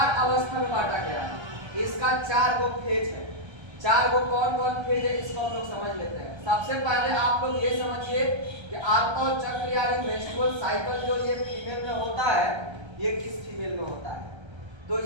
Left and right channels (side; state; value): left; late; 1.3 ms